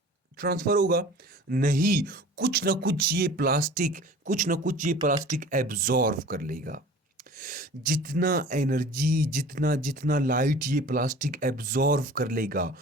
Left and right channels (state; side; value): normal; both; correlation 0.43